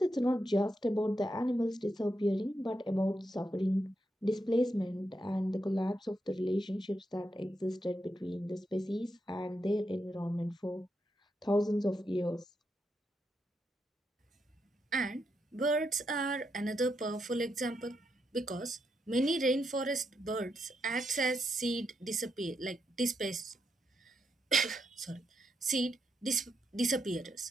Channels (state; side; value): normal; both; correlation 0.83